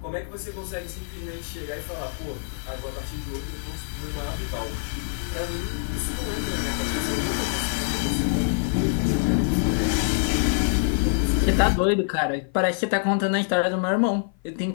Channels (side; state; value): right; silent; 56 dB below the other